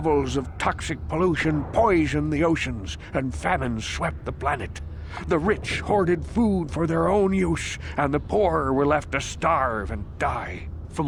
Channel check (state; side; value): identical; both; correlation 1.00